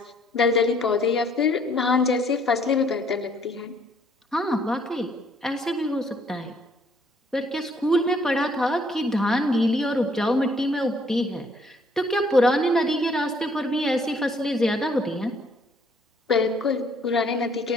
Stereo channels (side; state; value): both; normal; correlation 0.64